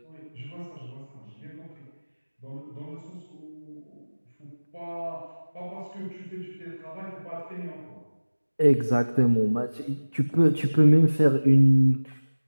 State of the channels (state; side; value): inverted; both; correlation -1.00